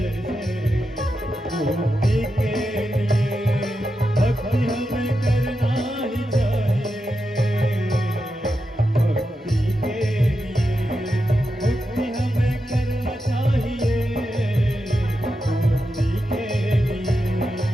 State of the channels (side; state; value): both; normal; correlation 0.88